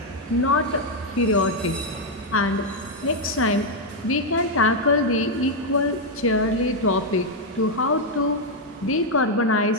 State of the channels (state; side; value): normal; both; correlation 0.01